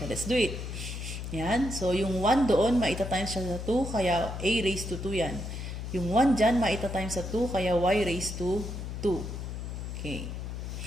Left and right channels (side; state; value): left; noise; hum, 6 dB below the sound